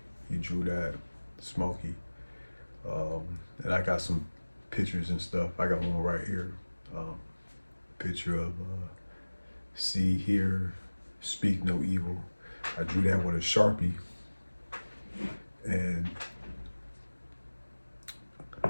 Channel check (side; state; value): both; inverted; correlation -1.00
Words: drew that, Smokey. And I got some pictures and stuff. I got one right here. Picture of see, hear, speak no evil. I drew that with a Sharpie. And